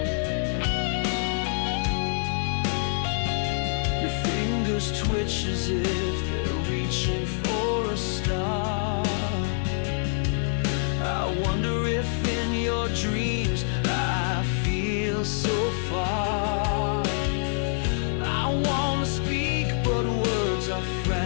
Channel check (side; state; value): right; silent; digital silence